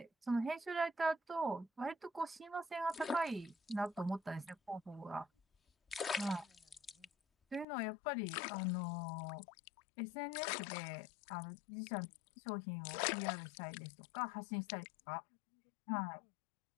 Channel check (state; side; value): drops out; right; at 7.7 s